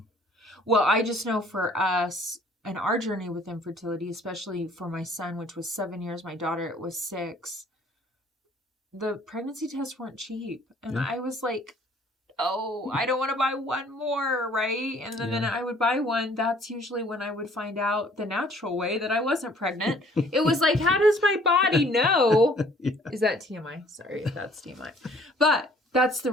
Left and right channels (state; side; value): normal; both; correlation 0.57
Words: Well, I just know for us and our journey with infertility, especially for my son, which was 7 years, my daughter, it was 6, the pregnancy tests weren't cheap. And I was like, oh, I don't want to buy one more, right? And then I would buy one. That's usually when I would find out the natural way that I wasn't pregnant. It was like, how does my body know? Is that TMI? Sorry if that's TMI. But that's the